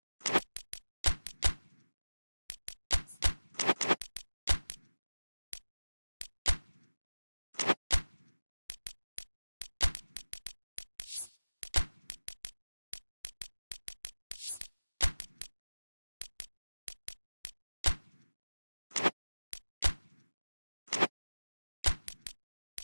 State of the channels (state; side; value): inverted; both; correlation -1.00